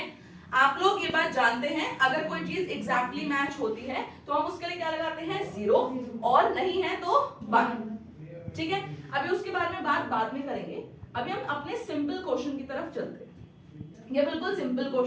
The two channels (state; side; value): identical; both; correlation 1.00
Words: आप लोग ये बात जानते हैं, अगर कोई चीज एग्जैक्टली मैच होती है तो हम उसके लिए क्या लगाते हैं, 0, और नहीं है तो 1। ठीक है, अभी उसके बारे में बात बाद में करेंगे। अभी हम अपने सिंपल क्वेश्चन की तरफ चलते हैं। ये बिल्कुल सिंपल